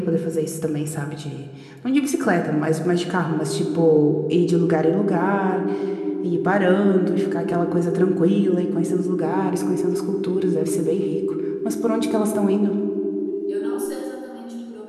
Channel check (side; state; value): both; identical; correlation 1.00